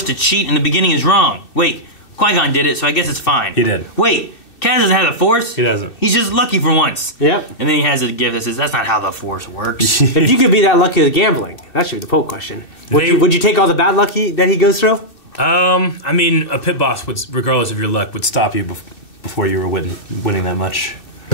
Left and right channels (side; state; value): right; late; 2.6 ms